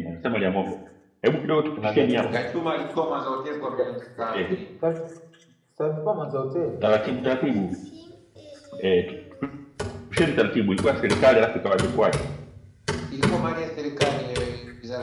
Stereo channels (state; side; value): identical; both; correlation 1.00